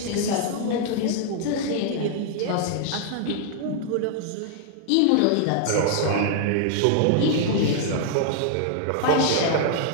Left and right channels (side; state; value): both; different; correlation -0.01